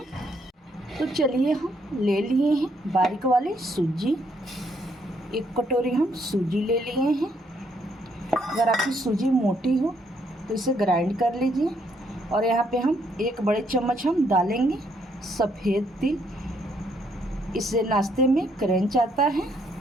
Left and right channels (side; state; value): both; normal; correlation 0.71